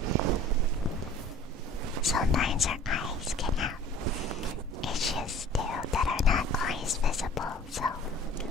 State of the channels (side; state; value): both; normal; correlation 0.47